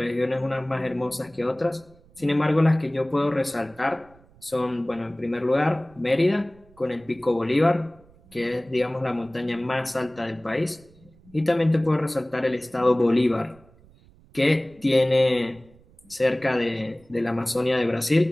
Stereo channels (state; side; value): noise; right; rumble, 27 dB below the sound